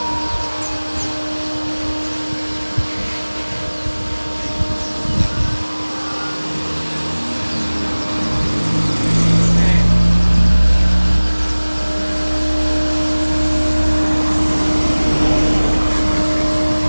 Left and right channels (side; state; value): both; inverted; correlation -1.00